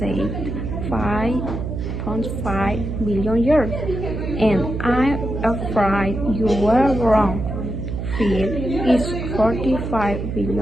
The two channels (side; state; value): right; noise; hum, 4 dB below the sound